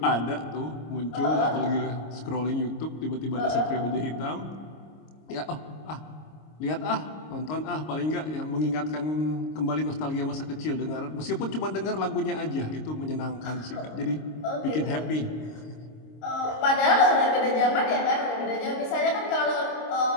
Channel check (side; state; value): right; late; 26 ms